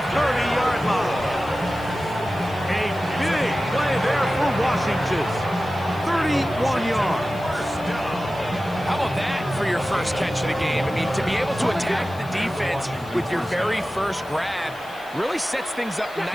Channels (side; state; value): left; noise; hiss, 23 dB below the sound